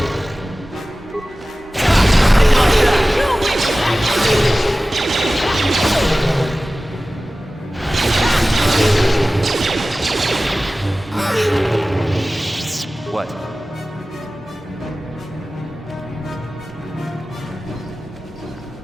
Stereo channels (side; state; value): both; normal; correlation 0.96